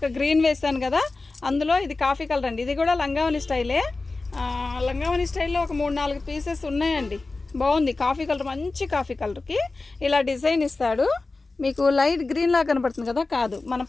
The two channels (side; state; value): right; quieter; 3.5 dB